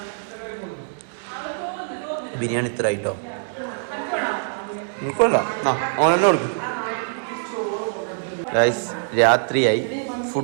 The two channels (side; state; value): left; silent; 63 dB below the other